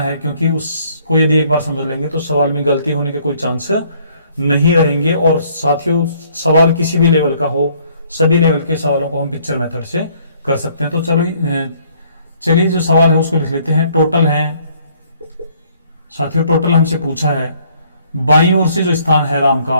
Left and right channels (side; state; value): both; inverted; correlation -0.63